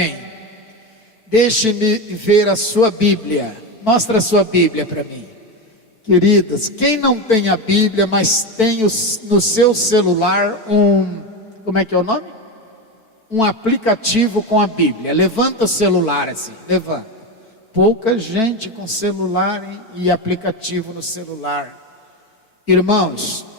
Deixe-me ver a sua Bíblia. Mostra a sua Bíblia para mim. Queridos, quem não tem a Bíblia, mas tem no seu celular como é que é o nome? Um aplicativo com a Bíblia. Levanta o celular assim, levanta. Pouca gente com celular e aplicativo no celular. Irmãos,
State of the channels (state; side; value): late; right; 4.5 ms